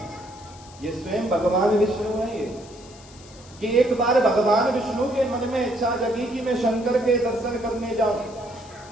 ये स्वयं भगवान विष्णु है। ये कि एक बार भगवान विष्णु के मन में इच्छा जगी कि मैं शंकर के दर्शन करने जाऊं,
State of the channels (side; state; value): left; noise; hiss, 22 dB below the sound